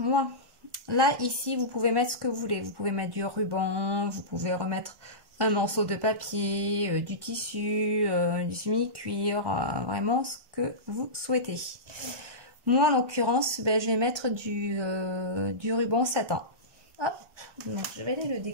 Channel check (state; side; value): late; left; 1.4 ms